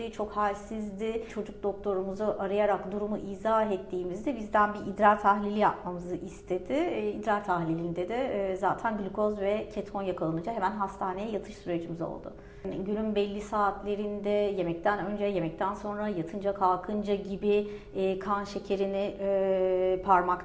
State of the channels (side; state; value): both; identical; correlation 1.00